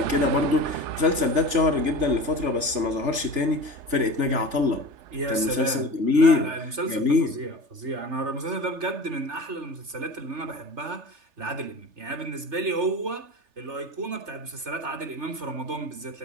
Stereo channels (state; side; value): late; left; 3.3 ms